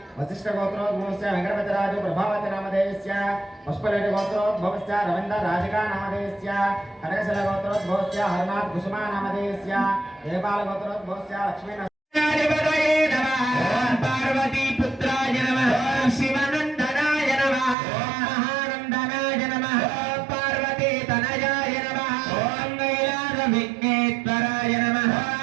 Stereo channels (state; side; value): drops out; left; at 17.8 s